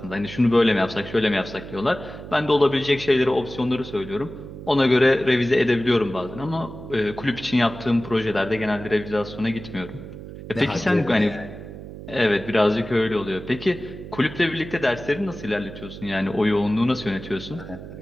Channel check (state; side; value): noise; right; hum, 13 dB below the sound